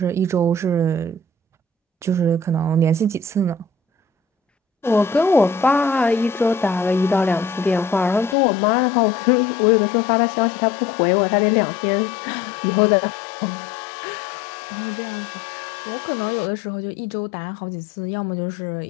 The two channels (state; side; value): drops out; right; at 8.3 s